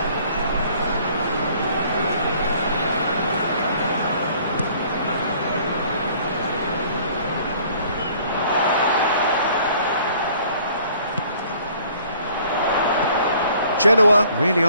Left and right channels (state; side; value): inverted; both; correlation -0.57